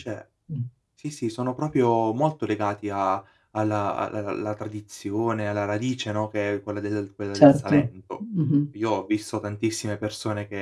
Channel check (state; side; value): identical; both; correlation 1.00